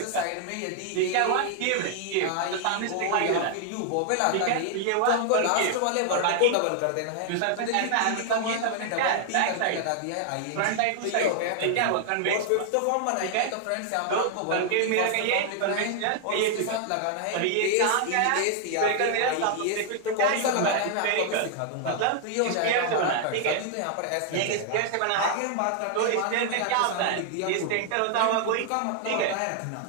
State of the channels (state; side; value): different; both; correlation 0.00